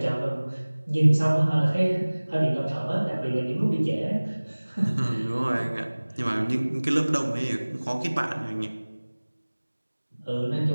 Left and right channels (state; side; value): inverted; both; correlation -1.00